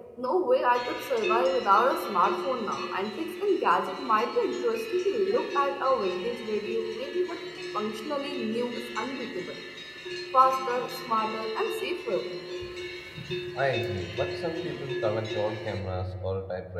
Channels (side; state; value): both; identical; correlation 1.00